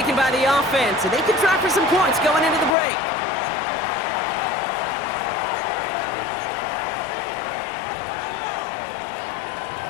by the offense, and they can try for some points going into the break.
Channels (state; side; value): drops out; right; at 2.7 s